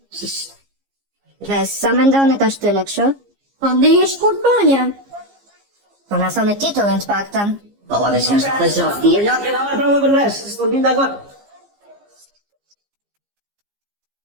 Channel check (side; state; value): left; late; 15 ms